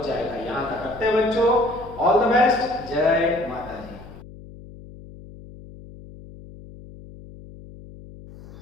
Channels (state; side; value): noise; left; hum, 18 dB below the sound